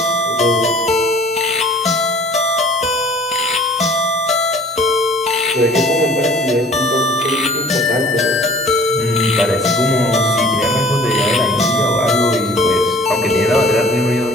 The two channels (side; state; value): both; normal; correlation 0.50